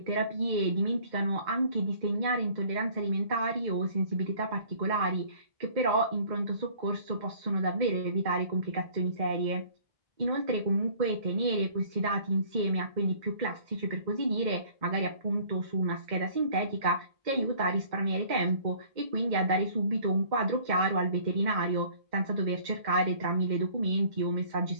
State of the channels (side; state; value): left; late; 2.1 ms